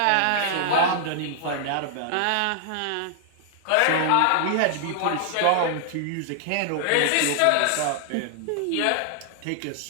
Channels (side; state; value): both; different; correlation -0.01